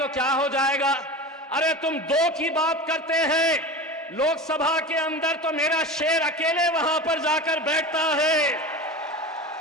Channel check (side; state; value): both; normal; correlation 0.30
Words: क्या हो जाएगा? अरे तुम दो की बात करते हैं, लोकसभा के अंदर तो मेरा शेर अकेले वहां पर जाकर बैठता है।